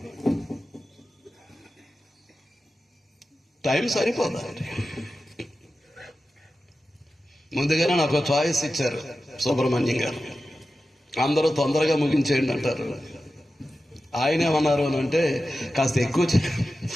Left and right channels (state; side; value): normal; both; correlation 0.93